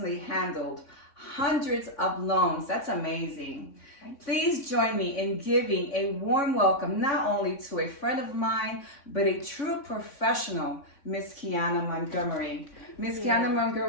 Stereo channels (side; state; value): right; late; 3.6 ms